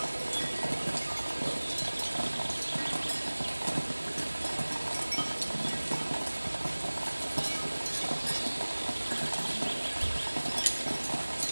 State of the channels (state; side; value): inverted; both; correlation -1.00